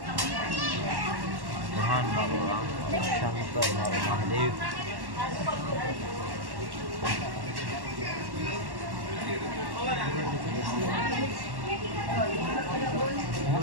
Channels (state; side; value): late; left; 1.1 ms